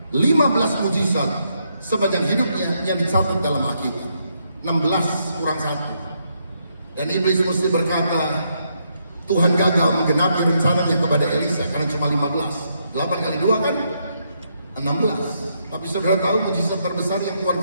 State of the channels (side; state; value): both; inverted; correlation -0.77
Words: 15 mujizat sepanjang hidupnya yang dicatat dalam Alkitab. 16 kurang 1. Dan iblis mesti berkata, Tuhan gagal menggenapi rencananya kepada Elisa karena cuma 15. 8 kali 2 kan 16. Tapi saudara tahu mujizat terbesar yang Tuhan